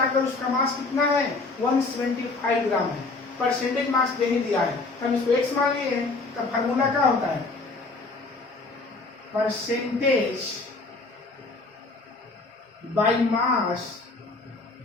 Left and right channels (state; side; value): quieter; right; 3.6 dB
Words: उसका मास कितना है, 175 ग्राम है। परसेंटेज मास नहीं दिया है, हम इसको एक्स मान लिए हैं, तो फार्मूला क्या होता है, percentage by mass